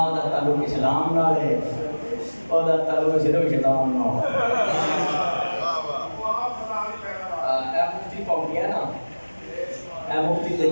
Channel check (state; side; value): inverted; both; correlation -1.00